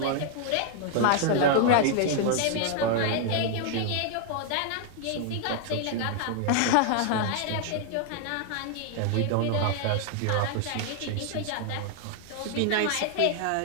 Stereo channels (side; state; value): both; different; correlation 0.00